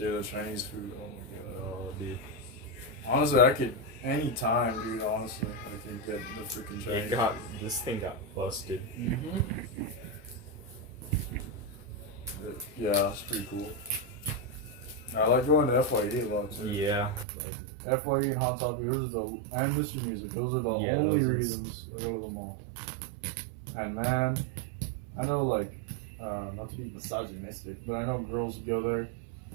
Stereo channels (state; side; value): drops out; left; at 17.2 s